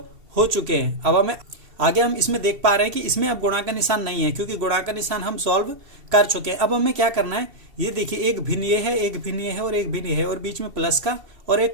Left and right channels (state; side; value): late; left; 2.7 ms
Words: हो चुके हैं। अब हमें आगे हम इसमें देख पा रहे हैं कि इसमें अब गुणा का निशान नहीं है, क्योंकि गुणा का निशान हम सॉल्व कर चुके हैं। अब हमें क्या करना है, ये देखिए एक भिन्न ये है, एक भिन्न ये है और एक भिन्न ये है, और बीच में प्लस का और